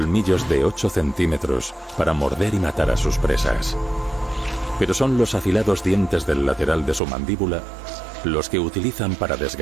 de 8 centímetros para morder y matar a sus presas. Pero son los afilados dientes del lateral de su mandíbula los que utilizan para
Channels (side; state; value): left; drops out; at 7.0 s